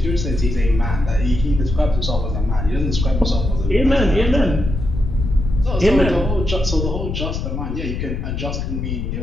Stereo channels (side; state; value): left; noise; rumble, 3 dB below the sound